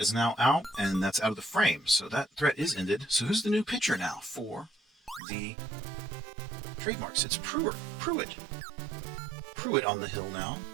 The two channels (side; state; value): left; drops out; at 5.2 s